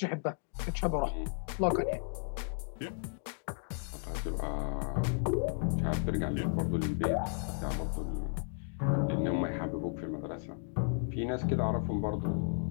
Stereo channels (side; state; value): right; silent; 55 dB below the other